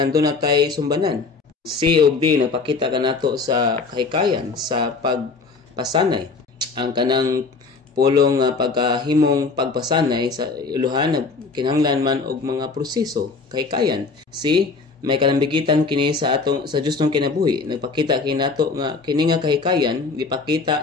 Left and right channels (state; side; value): quieter; right; 4.4 dB